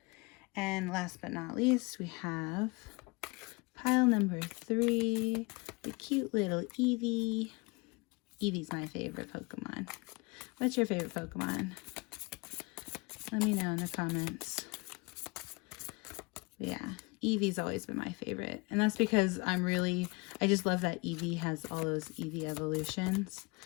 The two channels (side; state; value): right; quieter; 27.0 dB